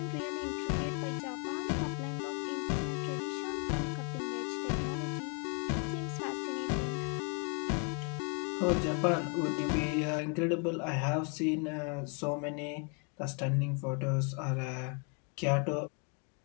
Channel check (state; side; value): quieter; right; 37.2 dB